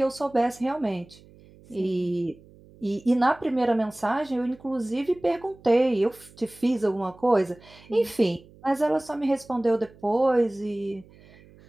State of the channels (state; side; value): noise; right; hum, 25 dB below the sound